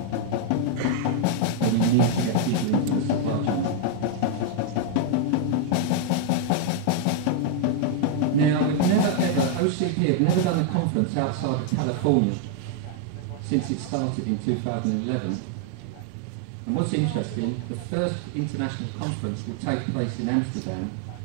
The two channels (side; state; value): both; different; correlation 0.00